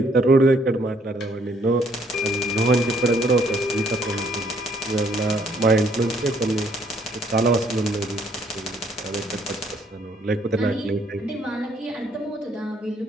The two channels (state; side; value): normal; both; correlation 0.66